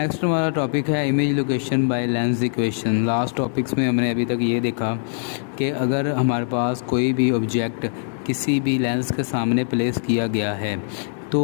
हमारा टॉपिक है image location by lens equation. Last topics में हमने अभी तक ये देखा कि अगर हमारे पास कोई भी ऑब्जेक्ट किसी भी लेंस के सामने प्लेस किया गया है तो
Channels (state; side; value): silent; right; digital silence